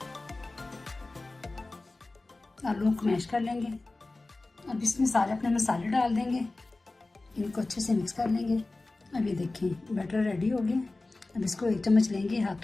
आलू को मैश कर लेंगे। अब इसमें सारे अपने मसाले डाल देंगे, इनको अच्छे से मिक्स कर लेंगे। अब ये देखें बैटर रेडी हो गया। अब इसको 1 चम्मच लेंगे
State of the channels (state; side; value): quieter; right; 3.2 dB